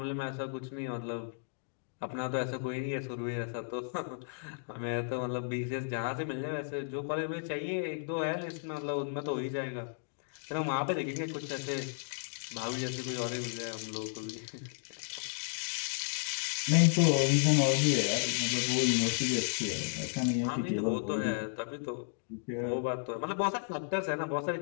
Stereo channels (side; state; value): right; silent; digital silence